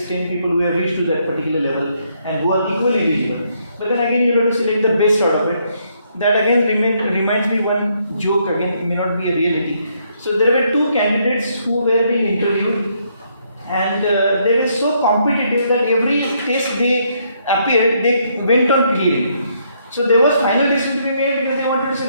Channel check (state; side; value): inverted; both; correlation -0.72